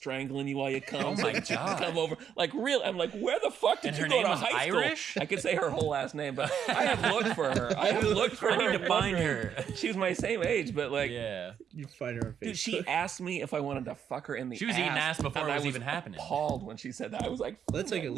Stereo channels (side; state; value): left; quieter; 8.2 dB